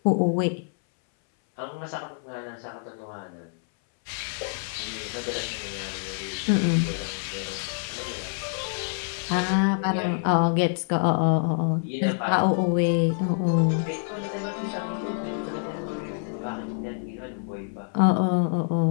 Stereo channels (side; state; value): right; silent; 60 dB below the other